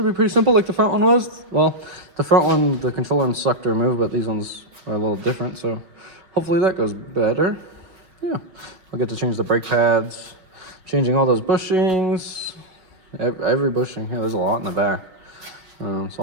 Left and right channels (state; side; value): late; left; 5.4 ms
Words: simple like the front one was. Well, the front one, the control arms suck to remove, but these ones are a little different, so hopefully that goes better. Yeah, I'll get to change the brake pads, changing all those bushings, every bushing. Yeah, there's a lot in the back. So